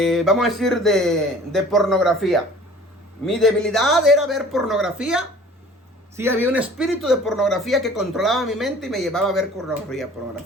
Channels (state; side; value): normal; both; correlation 0.48